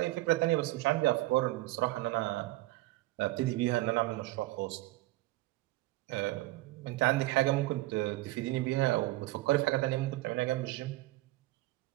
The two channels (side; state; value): left; quieter; 19.0 dB